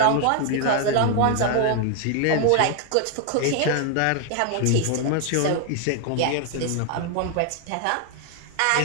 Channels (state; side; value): different; both; correlation 0.00